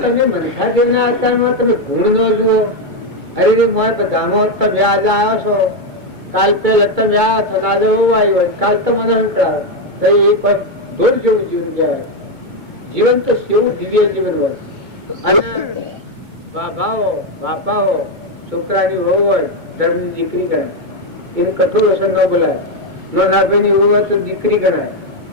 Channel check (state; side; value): late; left; 2.2 ms